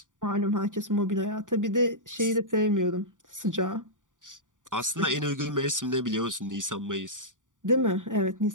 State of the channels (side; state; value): left; late; 0.87 ms